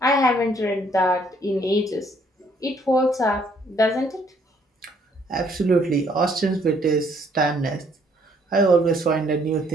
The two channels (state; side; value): normal; both; correlation 0.65